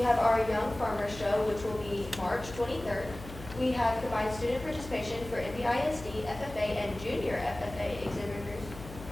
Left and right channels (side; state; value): left; noise; hum, 14 dB below the sound